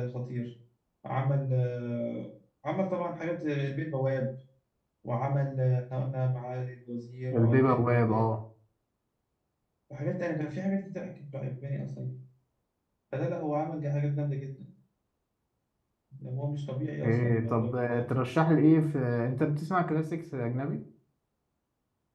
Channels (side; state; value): both; identical; correlation 1.00